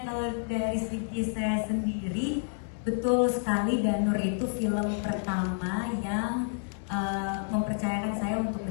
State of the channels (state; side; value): silent; right; digital silence